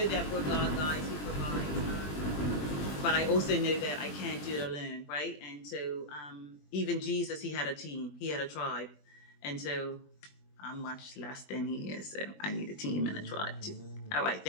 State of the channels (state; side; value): late; right; 20 ms